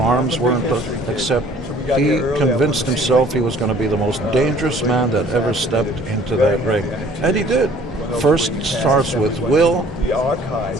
weren't, except he convinced himself he was going to be the most dangerous man that ever stepped into that ring. And he did. First starts with will,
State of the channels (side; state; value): both; normal; correlation 0.53